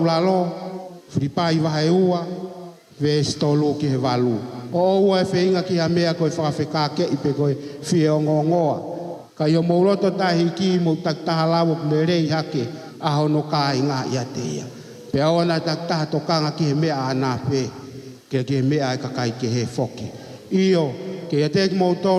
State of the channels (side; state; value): both; identical; correlation 1.00